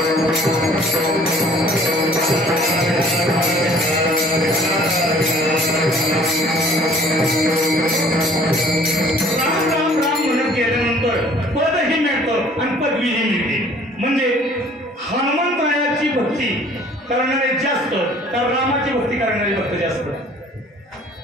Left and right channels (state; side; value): normal; both; correlation 0.54